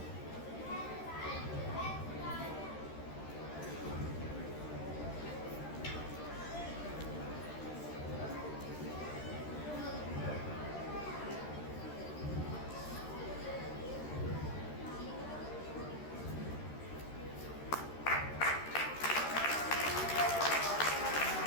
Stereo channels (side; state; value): right; late; 13 ms